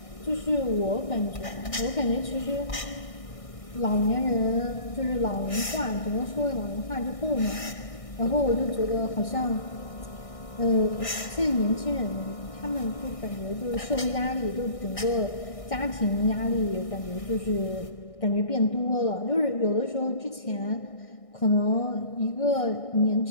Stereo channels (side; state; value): right; late; 1.6 ms